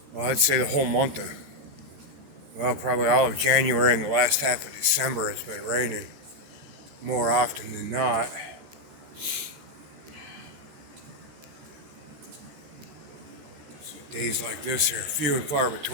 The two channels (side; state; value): left; late; 13 ms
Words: well, I'd say the whole month of, well, probably all of January and the last half of December, it's been raining more often than not. So days like this are few and far